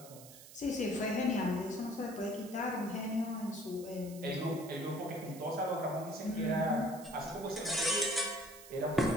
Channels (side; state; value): right; noise; hiss, 17 dB below the sound